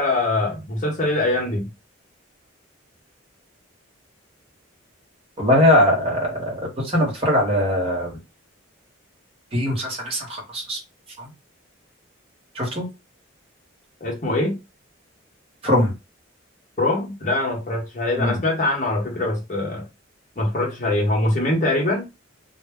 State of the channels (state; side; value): normal; both; correlation 0.21